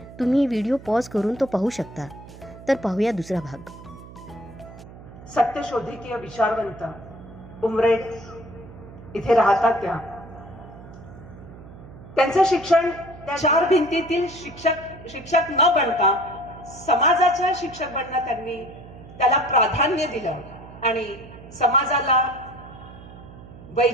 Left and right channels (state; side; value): noise; right; hum, 17 dB below the sound